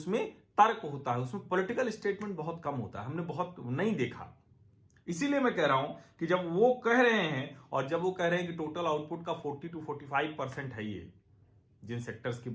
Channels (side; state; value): both; identical; correlation 1.00